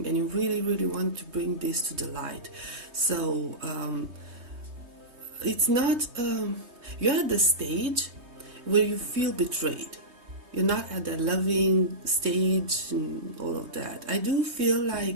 and you really want to bring this to the light. So it's not, you're at the stage where you feel betrayed. You're not at the loving stage and all of that. I do feel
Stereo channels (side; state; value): left; late; 3.2 ms